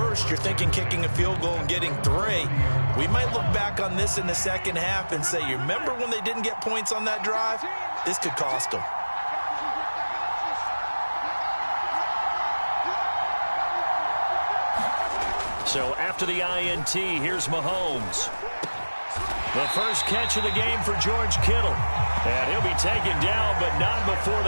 you're thinking kicking a field goal and getting 3. We might look back on this in the second half and say, you remember when they didn't get points on that drive? This could cost them. So after the INT, here's Mahomes. The first catch of the game for George Kittle. And he'll be taken down, but not before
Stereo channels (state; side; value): inverted; both; correlation -1.00